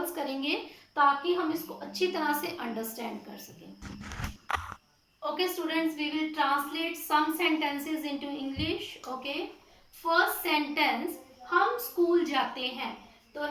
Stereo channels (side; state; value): both; identical; correlation 1.00